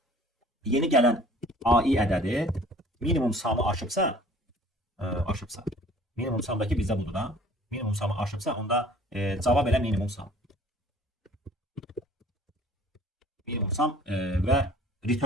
yeni gələn AI ədədi minimum samı aşıbsa, minimum samdakı bizdə budur da, minimum samı aşıbsa, onda cavab elə minimum sam. Minimum sam və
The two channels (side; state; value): both; normal; correlation 0.51